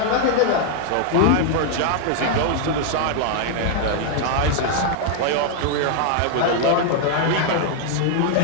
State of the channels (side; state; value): both; different; correlation 0.00